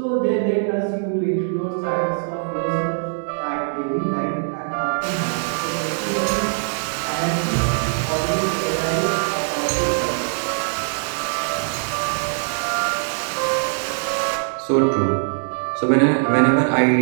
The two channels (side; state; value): left; silent; digital silence